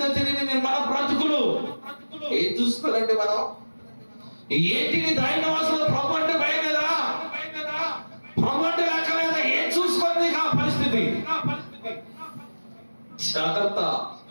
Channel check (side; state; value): both; inverted; correlation -1.00